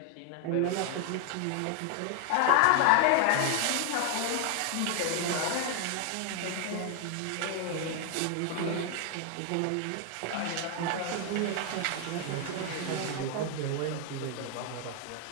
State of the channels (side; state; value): both; different; correlation 0.00